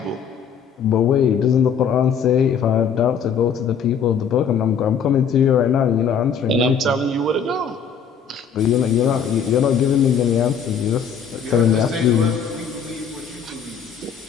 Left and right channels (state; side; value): quieter; right; 6.9 dB